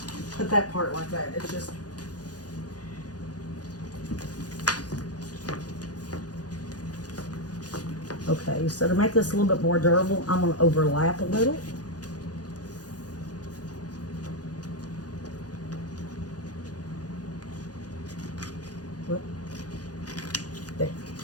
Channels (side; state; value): right; late; 0.68 ms